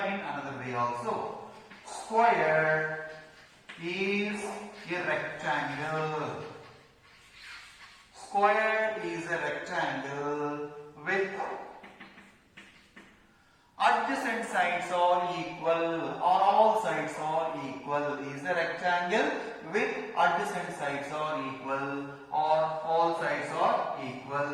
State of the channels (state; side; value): identical; both; correlation 1.00